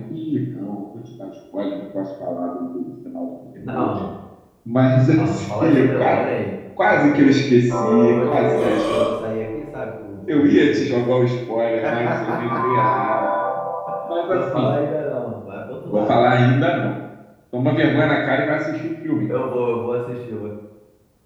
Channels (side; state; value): both; identical; correlation 1.00